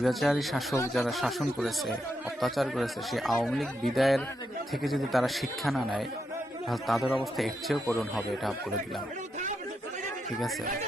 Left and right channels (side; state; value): both; normal; correlation 0.83